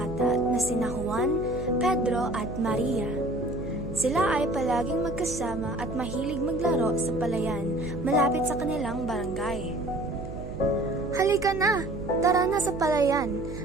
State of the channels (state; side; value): noise; right; hum, 9 dB below the sound